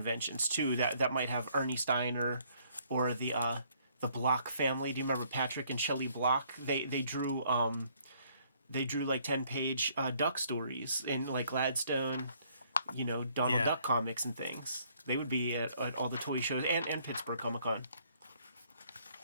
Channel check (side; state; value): both; inverted; correlation -0.64